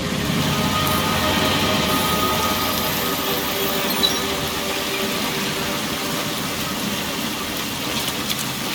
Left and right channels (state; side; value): identical; both; correlation 1.00